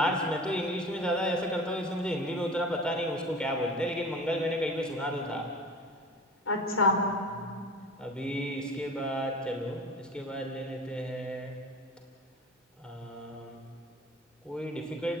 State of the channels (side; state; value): both; normal; correlation 0.38